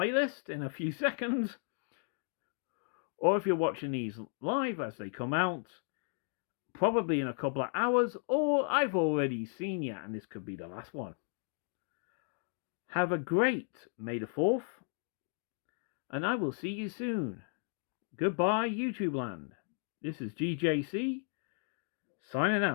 in a few seconds, or if you're watching these live as they come out, probably in a couple of hours, or I've already seen you and this could be the last one. Have a great May the 4th, and I will see you soon. Goodbye, YouTube land. This is GJC, signing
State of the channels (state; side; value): silent; right; 55 dB below the other